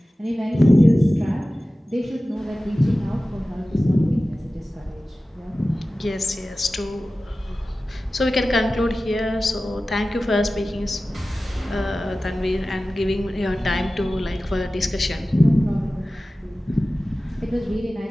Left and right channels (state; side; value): normal; both; correlation 0.96